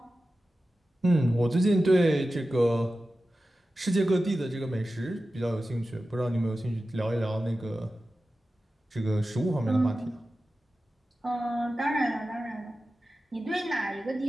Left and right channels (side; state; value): both; normal; correlation 0.94